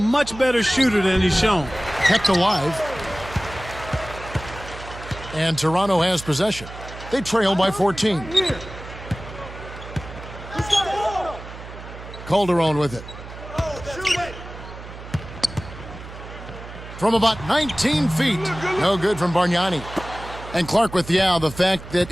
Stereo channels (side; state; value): right; noise; hum, 13 dB below the sound